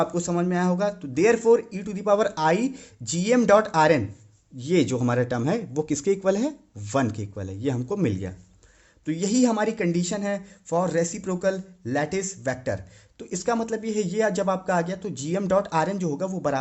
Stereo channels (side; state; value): both; identical; correlation 1.00